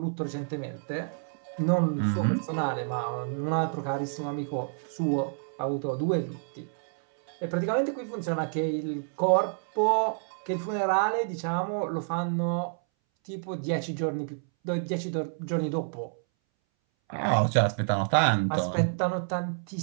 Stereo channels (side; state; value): left; silent; 59 dB below the other